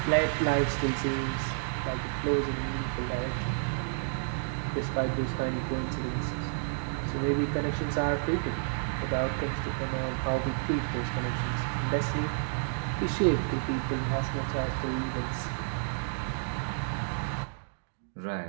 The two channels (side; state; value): left; silent; digital silence